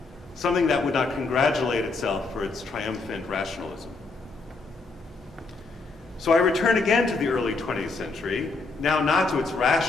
something that would not congratulate itself for its triumphant rationalism. So I return again to the early 20th century, now not to its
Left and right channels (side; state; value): right; quieter; 3.9 dB